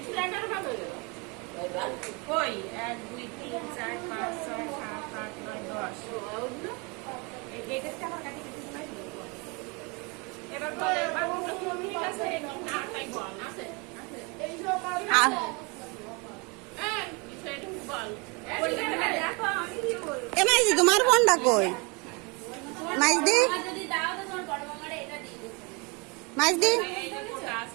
কই 1 2 3 4 5 6 7 8 9 10 এই ডেটটা আমার কাছে কিছু নাই। এবার বলে বাবুটা কি মিনিট আছে না তাই বল আছে আছে এই যে বল হ্যাঁ বিষয়টা বল দেখো আমি কি বলবো। এ মাইজি তোমার ফোনটা কই? মাইজি যদি দাও তো তোমার বড় মামারে এটা দিয়ে দিও। মাইজি এই যে ক্লাস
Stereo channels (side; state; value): left; quieter; 29.9 dB